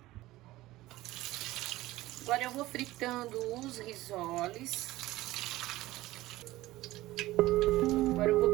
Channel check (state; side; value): quieter; left; 17.3 dB